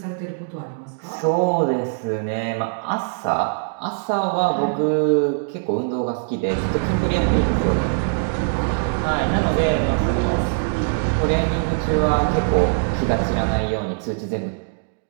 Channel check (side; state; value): left; silent; digital silence